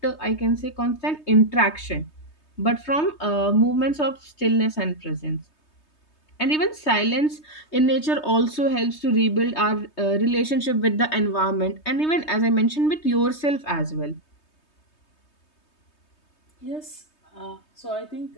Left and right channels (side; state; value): right; late; 3.2 ms